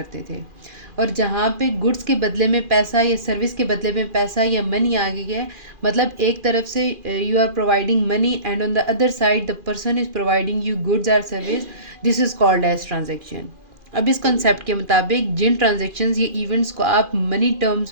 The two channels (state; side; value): late; left; 2.4 ms